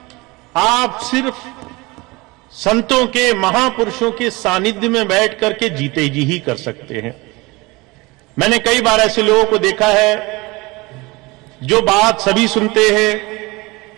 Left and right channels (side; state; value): left; quieter; 23.5 dB